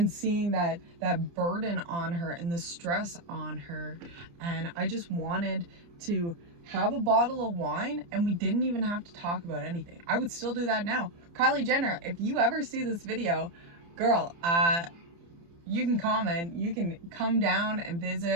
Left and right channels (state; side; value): late; left; 29 ms